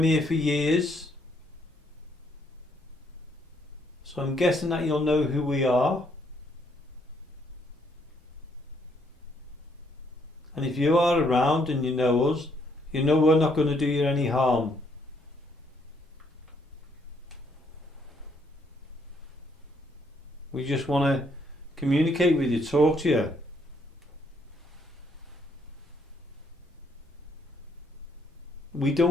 here for years. So I'm guessing that you'll know who we are. And if you are around and you know us, you know we're not going to do you any harm. We just want to communicate with you, talk to you. We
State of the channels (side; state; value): both; normal; correlation 0.70